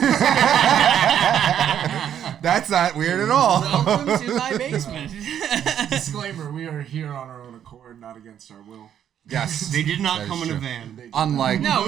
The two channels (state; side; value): quieter; left; 9.6 dB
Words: That's not weird at all. Welcome to my basement. Disclaimer, we are here on our own accord, not against our will. Yes. They did not That is come in a true. van. Unlike